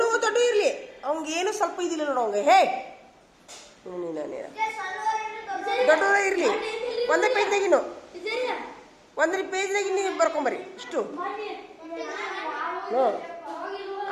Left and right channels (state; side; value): identical; both; correlation 1.00